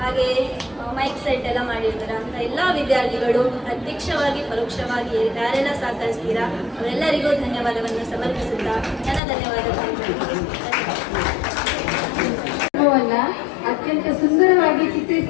ಹಾಗೆ ಮೈಕ್ ಸೆಟ್ ಎಲ್ಲ ಮಾಡಿರ್ತಾರೆ. ಅಂತ ಎಲ್ಲ ವಿದ್ಯಾರ್ಥಿಗಳು ಪ್ರತ್ಯಕ್ಷವಾಗಿ ಪರೋಕ್ಷವಾಗಿ ಯಾರೆಲ್ಲ ಸಹಕರಿಸ್ತೀರಾ ಅವರೆಲ್ಲರಿಗೂ ಧನ್ಯವಾದವನ್ನು ಸಮರ್ಪಿಸುತ್ತಾ ನನ್ನ ಧನ್ಯವಾದಗಳು. ಅತ್ಯಂತ ಸುಂದರವಾಗಿ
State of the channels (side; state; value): right; drops out; at 9.2 s